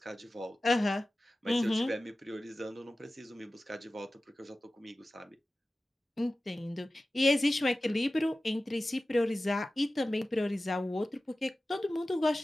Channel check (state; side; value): normal; both; correlation 0.96